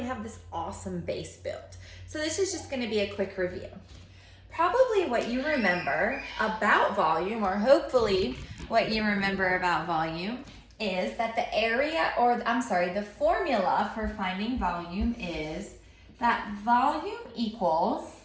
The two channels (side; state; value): both; identical; correlation 1.00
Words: have this awesome base built. So this is just gonna be a quick review. Probably what you remember about volume, or hopefully what you remember about volume, is that the formula for finding volume is that volume equals